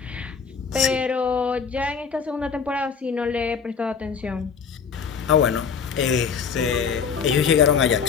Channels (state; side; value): quieter; right; 6.2 dB